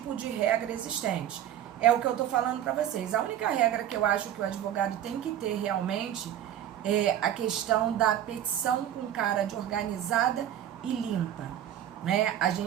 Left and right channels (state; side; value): quieter; left; 11.0 dB